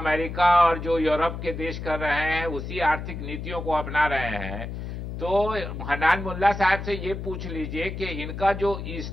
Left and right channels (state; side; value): noise; left; hum, 7 dB below the sound